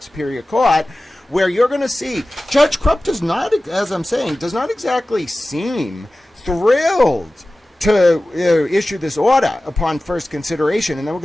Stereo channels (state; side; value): normal; both; correlation 0.96